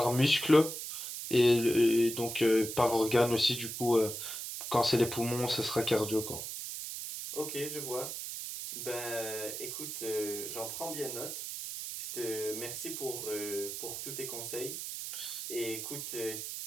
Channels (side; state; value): right; noise; hiss, 6 dB below the sound